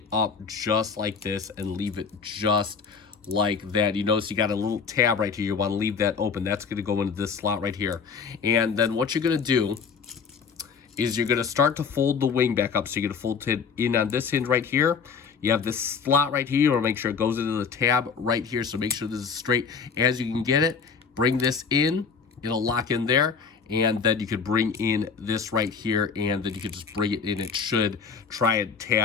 up just like this and leave it just like that. You notice you got a little tab right here. You want to leave that open. That's going to go into this slot right here. And then what you're going to do is you're going to start to fold the wing back up. So you're going to fold it in on this hinge right here. You have this slot right here. You want to make sure it goes into the tab right here. So make sure this is straight as you can get it. Bring this in. It'll lock in there. And then you could bring in this right here, and then you could just bring it in. It should try and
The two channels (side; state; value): right; quieter; 5.8 dB